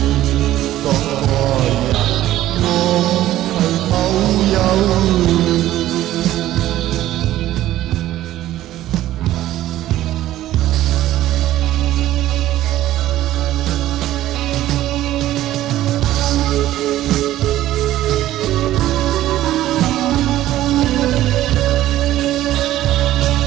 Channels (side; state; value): left; quieter; 14.1 dB